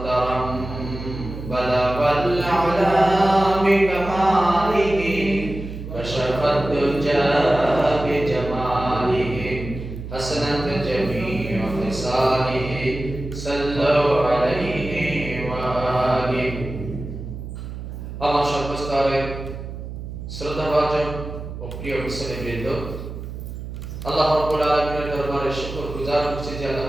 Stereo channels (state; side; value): noise; right; hum, 9 dB below the sound